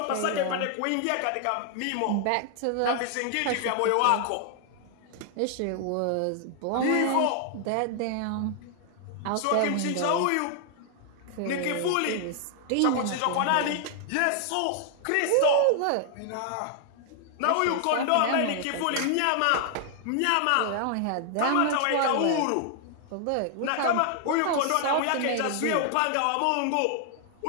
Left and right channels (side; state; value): both; different; correlation 0.00